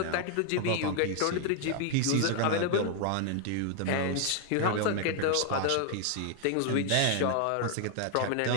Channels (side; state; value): both; different; correlation 0.00